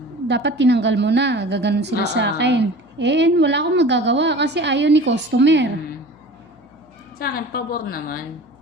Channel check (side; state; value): left; noise; hum, 30 dB below the sound